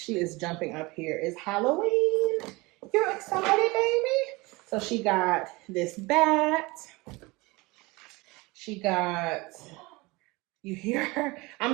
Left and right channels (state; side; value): quieter; left; 23.6 dB